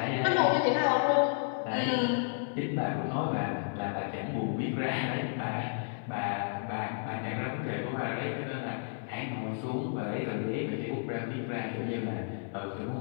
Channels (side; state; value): right; silent; 56 dB below the other